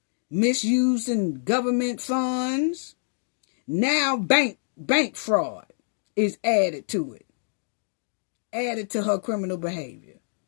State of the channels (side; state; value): right; silent; digital silence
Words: Misusing government funds. Now bank fraud is added to it. Added to her criminal behavior.